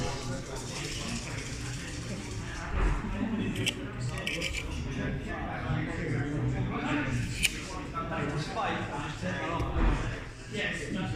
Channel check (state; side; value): identical; both; correlation 1.00